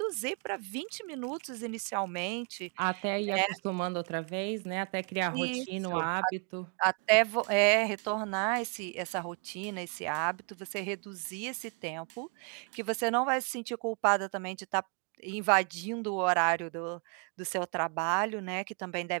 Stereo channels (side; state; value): left; quieter; 38.3 dB